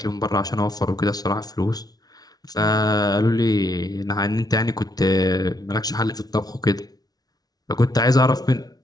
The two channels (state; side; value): late; right; 0.19 ms